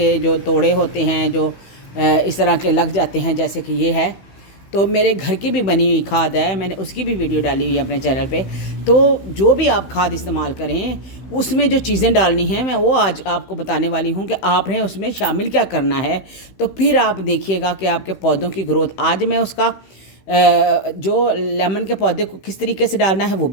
जो तोड़े होते हैं, जो इस तरह के लग जाते हैं, जैसे कि ये है, तो मेरे घर की भी बनी हुई खाद है, मैंने उसकी भी वीडियो डाली हुई है अपने चैनल पे। तो जो भी आप खाद इस्तेमाल करें, उसमें जो चीज़ें डालनी हैं, मैं वो आज आपको बताने वाली हूँ कि आपने उसमें शामिल क्या करना है। तो फिर आप देखिएगा कि आपके पौधों की ग्रोथ, आज मैं उसका जो लेमन के पौधे को किस तरीके से डालना है वो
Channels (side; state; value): right; late; 16 ms